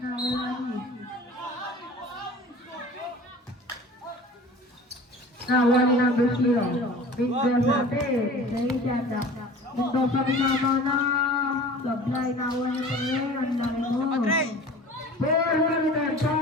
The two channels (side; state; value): both; normal; correlation 0.42